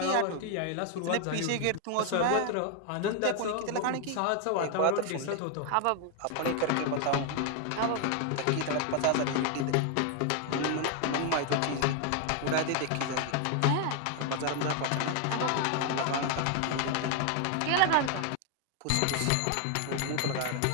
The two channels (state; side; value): different; both; correlation 0.01